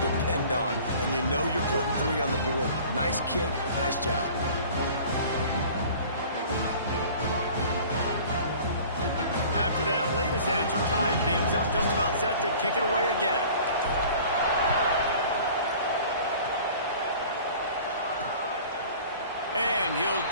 depend on, and you know you're putting 3 on the board. Nice kick, nice job. After that latest answer tied things up, just about set to kick it away again. And he'll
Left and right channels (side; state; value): both; inverted; correlation -0.46